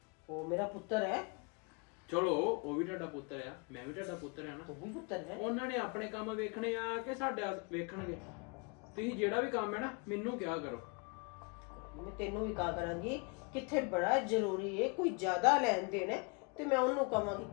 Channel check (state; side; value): quieter; right; 32.5 dB